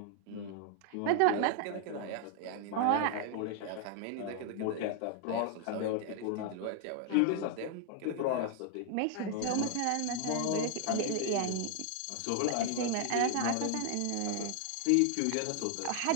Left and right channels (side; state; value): both; different; correlation 0.00